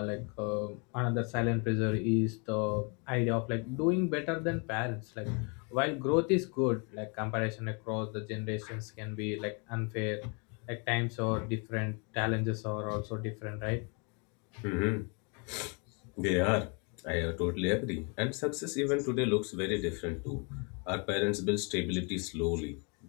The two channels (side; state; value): right; quieter; 34.8 dB